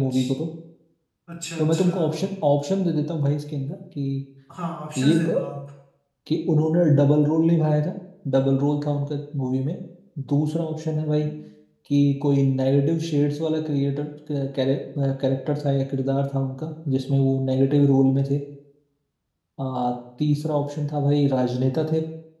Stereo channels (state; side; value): identical; both; correlation 1.00